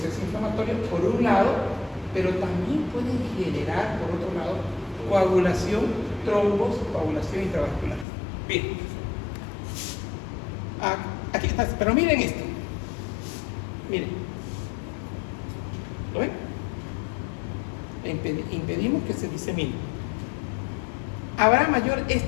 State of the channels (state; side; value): drops out; right; at 8.1 s